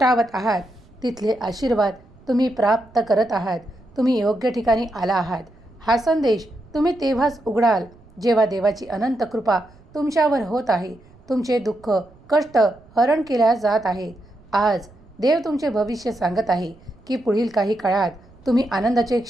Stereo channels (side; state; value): right; noise; rumble, 26 dB below the sound